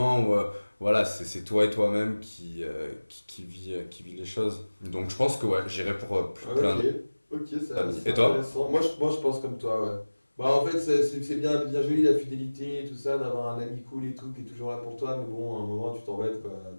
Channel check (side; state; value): both; inverted; correlation -1.00